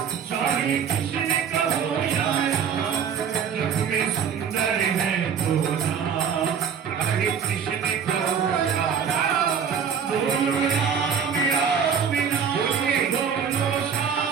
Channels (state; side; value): quieter; left; 7.2 dB